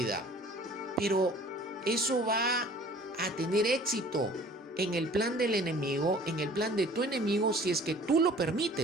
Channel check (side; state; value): both; normal; correlation 0.50